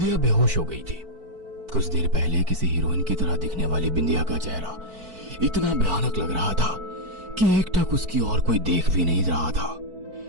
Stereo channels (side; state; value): left; late; 4.5 ms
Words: बेहोश हो गई थी। कुछ देर पहले किसी हीरोइन की तरह दिखने वाली बिंदिया का चेहरा इतना भयानक लग रहा था कि एकटक उसकी और कोई देख भी नहीं रहा था।